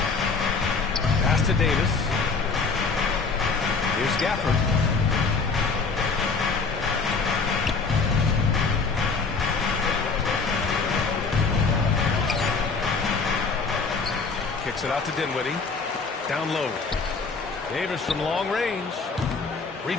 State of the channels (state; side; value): quieter; right; 4.6 dB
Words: Pass to Davis. Here's Gafford. Kicks it out to Dinwiddie. Down low. Davis from long range.